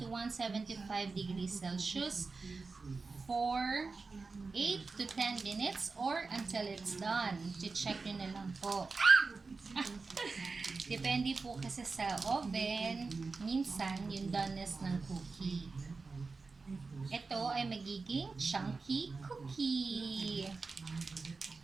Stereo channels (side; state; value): left; quieter; 4.2 dB